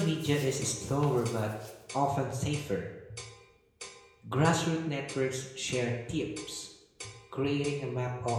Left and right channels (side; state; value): both; identical; correlation 1.00